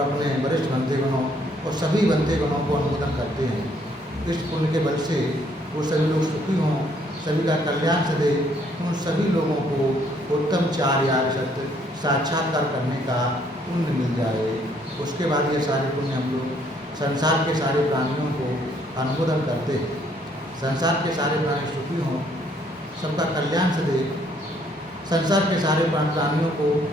वरिष्ठ बंधुगणों और सभी बंधुगणों को अनुमोदन करते हैं। इस पुण्य के बल से वो सभी लोग सुखी हों, सभी का कल्याण सदे, उन सभी लोगों को उत्तम चार्य सत्य साक्षात्कार करने का पुण्य मिल जाए। उसके बाद ये सारे पुण्य हम लोग संसार के सारे प्राणियों को अनुमोदन करते हैं। संसार के सारे प्राणी सुखी हों, सबका कल्याण सदे, संसार के सारे प्राणियों को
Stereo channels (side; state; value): both; normal; correlation 0.66